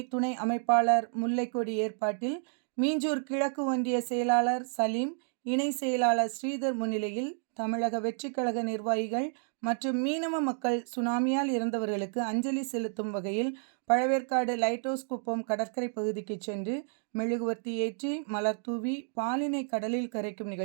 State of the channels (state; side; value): silent; left; digital silence